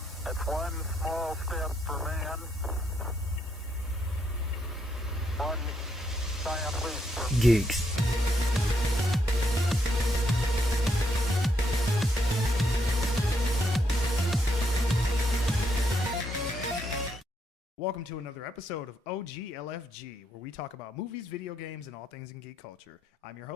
It's one small step for man, one giant leap for Geeks. Welcome to another episode of OGLFG, where we talk about movies, video games, and all things in geek culture. I'm your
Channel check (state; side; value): normal; both; correlation 0.76